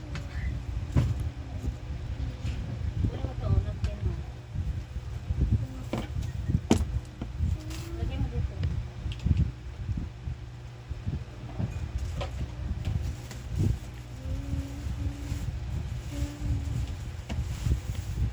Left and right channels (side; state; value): both; identical; correlation 1.00